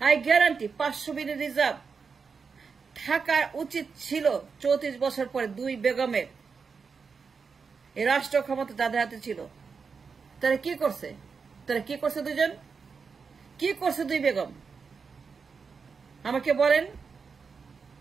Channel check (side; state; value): left; quieter; 5.4 dB